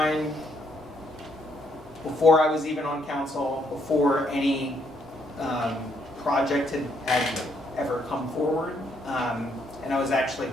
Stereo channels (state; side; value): normal; both; correlation 0.72